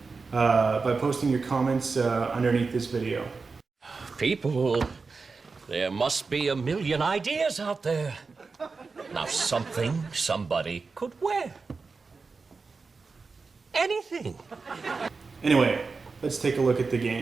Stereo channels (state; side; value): quieter; left; 4.4 dB